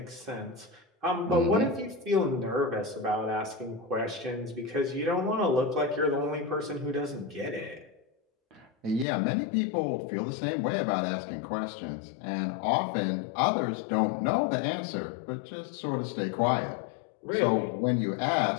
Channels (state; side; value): drops out; right; at 9.1 s